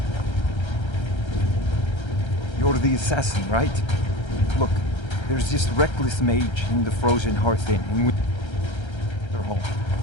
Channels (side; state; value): right; late; 1.3 ms